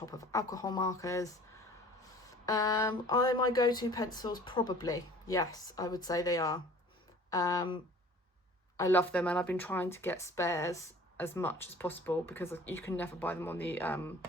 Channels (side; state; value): both; normal; correlation 0.48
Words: of alcohol markers. Are they my go-to pencils? Probably. Yes, I would say they are. I love them, and I've been trying to get spares as much as possible because you can never buy them on the